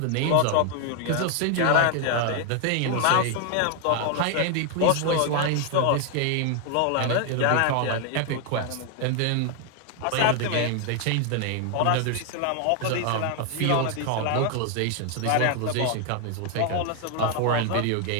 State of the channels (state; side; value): different; both; correlation 0.00